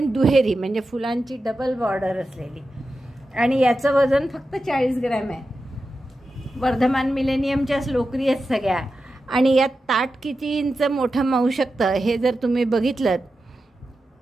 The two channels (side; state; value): both; normal; correlation 0.91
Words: दुहेरी, म्हणजे फुलांची डबल बॉर्डर असलेली। आणि याचं वजन फक्त 40 ग्रॅम आहे। वर्धमान मिलेनियमच्याच लोकरी आहेत सगळ्या। आणि यात ताट किती इंच मोठं मावू शकतं हे जर तुम्ही बघितलं